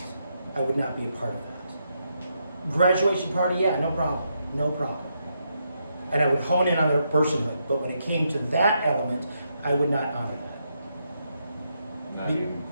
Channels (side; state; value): both; inverted; correlation -0.81